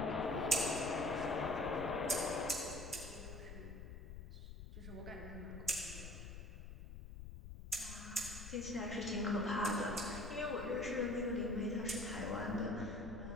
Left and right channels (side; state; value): left; noise; rumble, 10 dB below the sound